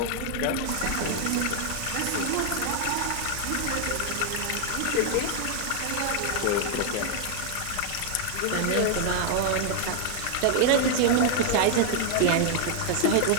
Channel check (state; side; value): different; both; correlation 0.00